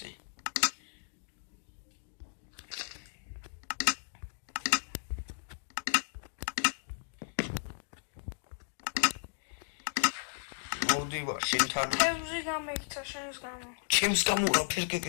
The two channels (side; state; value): right; silent; digital silence